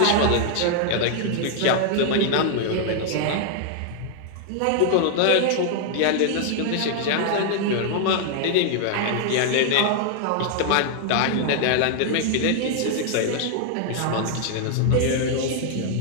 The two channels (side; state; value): both; different; correlation 0.00